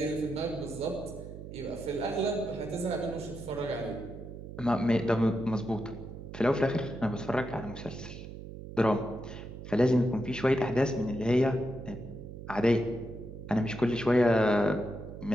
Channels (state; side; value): noise; right; hum, 11 dB below the sound